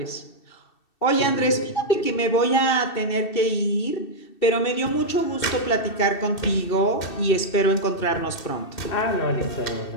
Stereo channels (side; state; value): right; late; 2.6 ms